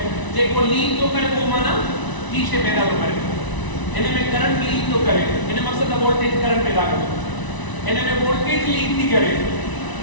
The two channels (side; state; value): right; late; 1.0 ms